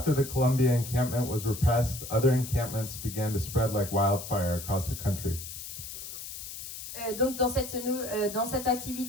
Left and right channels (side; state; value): left; noise; hiss, 10 dB below the sound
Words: the Columbia encampment was repressed, other encampments began to spread like wildfire across the country. Donc dans cette